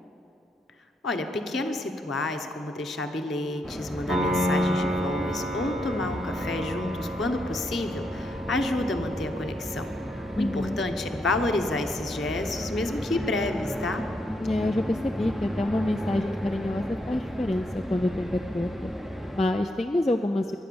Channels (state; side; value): normal; both; correlation 0.79